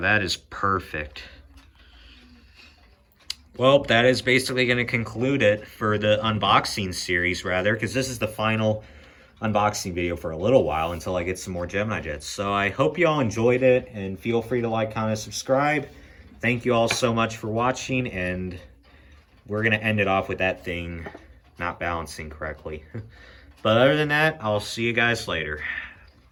is perfect. Well, that is basically going to conclude it for the unboxing series, rather, because this is the final unboxing video for a little while until I get some more Gemini jets. So I hope you all enjoyed it, and feel free to like, comment, subscribe. Thank you all so much for watching, and we're going to end it off with that thing not balancing correctly. But other than that, I'll see you guys later.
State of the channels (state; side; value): identical; both; correlation 1.00